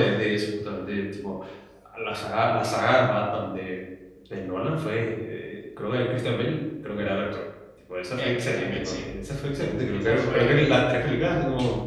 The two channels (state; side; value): identical; both; correlation 1.00